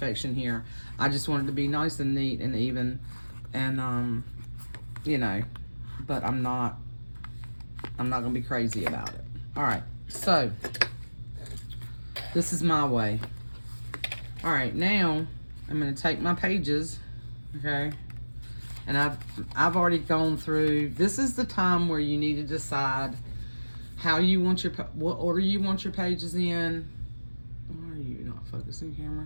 here. I just want it to be nice and neat and even, and you know, but I'm not gonna be crazy about it. All right, so this is my way. All right, now I'm gonna take my pages, okay, and I've already gone through. This is the time where you need to decide how you want what order you want your pages in. Why are you not focusing,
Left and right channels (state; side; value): inverted; both; correlation -1.00